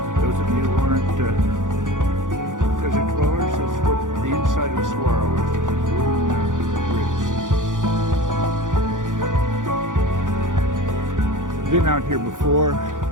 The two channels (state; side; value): late; left; 0.88 ms